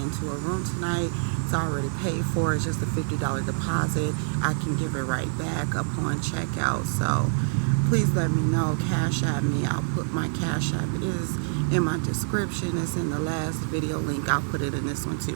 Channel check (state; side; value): silent; left; 61 dB below the other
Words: a room tonight. It's already paid for. It's just a $50 deposit. I can give it right back upon checkout. So please let me know. Cash at me. I'll put my cash app. It is in my description. It's in the last video link. I'll put it in this one